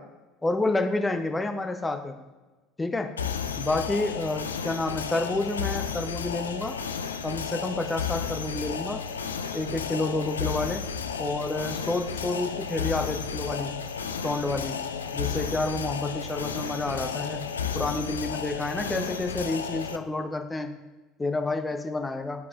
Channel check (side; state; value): right; quieter; 3.2 dB